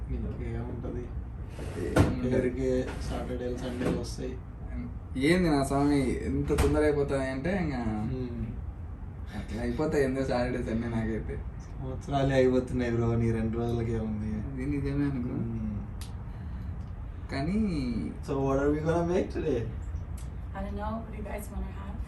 ఇంకేముంటుంది అందరికీ సాటర్డేలు సండేలు వస్తాయి. ఏంది నా స్వామి ఎంత తొందర అయిపోతాయి అంటే ఇంకా అట్లా అయిపోతాయి ఎందుకు సాటర్డే సండే నాకైతే సంవత్సరాలే అయిపోతున్నాయి బ్రో నీ 2 రోజులకే ఉంది. ఇది నిజమే అనుకో కానీ so what are we gonna make today? I don't know. What do you guys want to have?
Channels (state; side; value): identical; both; correlation 1.00